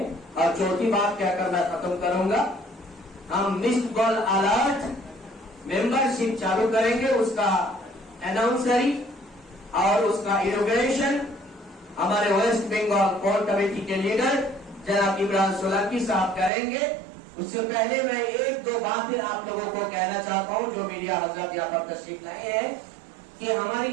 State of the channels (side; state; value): left; drops out; at 16.5 s